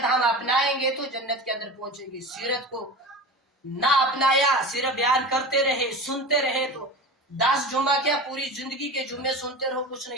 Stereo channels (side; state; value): both; normal; correlation 0.31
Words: ہم اپنائیں گے تو جنت کے اندر پہنچیں گے، سیرت کو نہ اپنایا، صرف بیان کرتے رہے، سنتے رہے تو 10 جمعہ کیا پوری زندگی کے جمعے سنتے رہو، کچھ